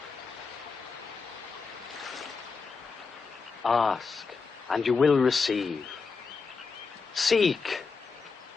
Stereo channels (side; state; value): right; quieter; 4.8 dB